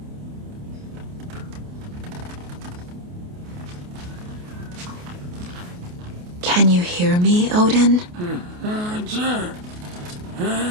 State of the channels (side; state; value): left; late; 28 ms